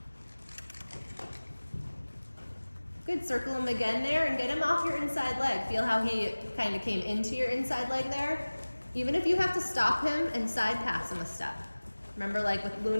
Good, circle him again there and get him off your inside leg. Feel how he kind of came into your inside leg there? Even if you have to stop him and side pass him a step. Remember like with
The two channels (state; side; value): inverted; both; correlation -1.00